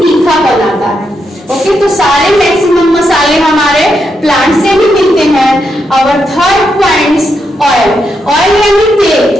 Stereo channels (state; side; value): normal; both; correlation 0.82